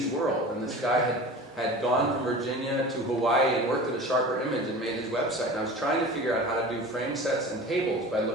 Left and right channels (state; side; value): normal; both; correlation 0.36